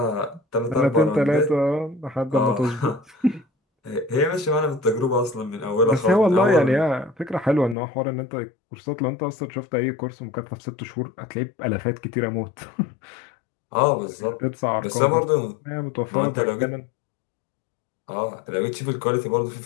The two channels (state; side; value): drops out; right; at 7.8 s